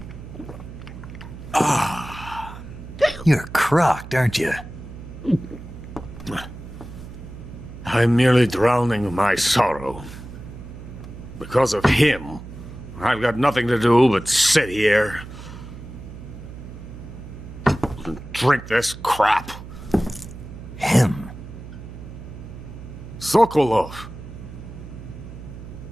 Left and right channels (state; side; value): noise; right; hum, 13 dB below the sound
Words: You're crocked, aren't you? I'm merely drowning my sorrow. Because of him, I've got nothing to do but sit here and drink this crap. Him? Sokolov.